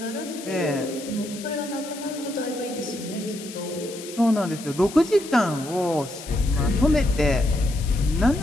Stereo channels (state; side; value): noise; left; hiss, 14 dB below the sound